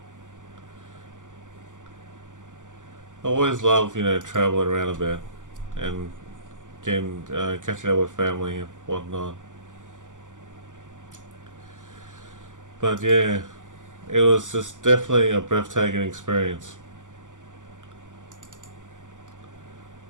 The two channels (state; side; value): late; left; 0.87 ms